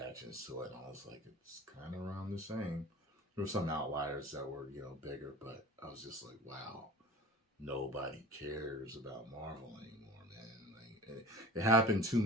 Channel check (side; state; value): both; normal; correlation 0.39